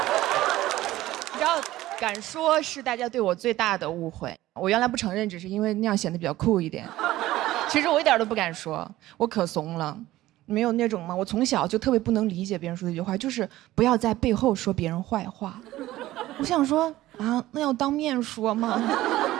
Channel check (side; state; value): left; quieter; 15.9 dB